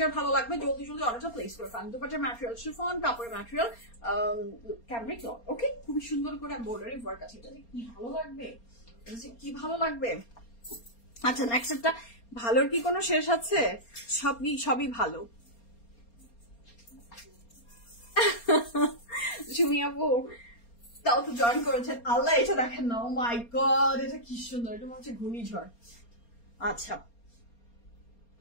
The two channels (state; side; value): late; right; 4.3 ms